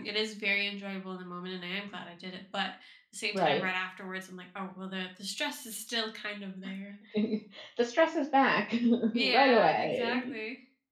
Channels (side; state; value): both; identical; correlation 1.00